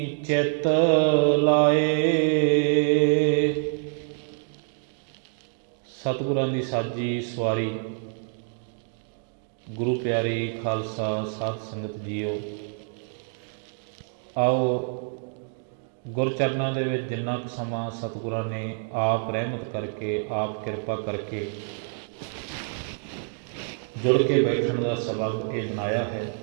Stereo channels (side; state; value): left; silent; 60 dB below the other